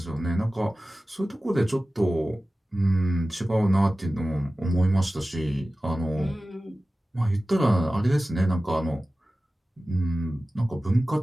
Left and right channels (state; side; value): normal; both; correlation 0.96